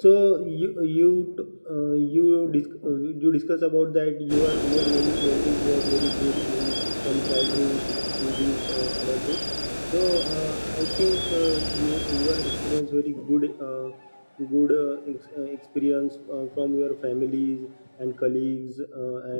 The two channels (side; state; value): both; inverted; correlation -1.00